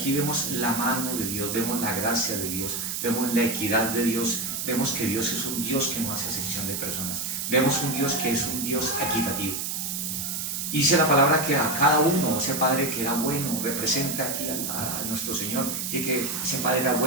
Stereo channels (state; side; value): noise; right; hiss, 3 dB below the sound